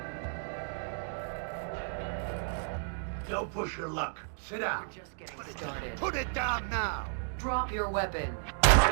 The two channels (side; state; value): left; silent; 56 dB below the other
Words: Don't push your luck. Sit down. We're just getting started. Put it down now. Drop your weapon.